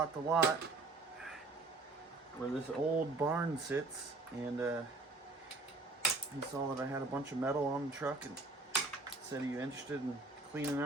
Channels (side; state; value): left; quieter; 3.4 dB